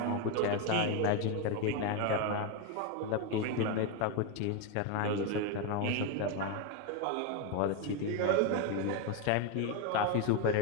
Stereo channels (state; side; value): different; both; correlation 0.02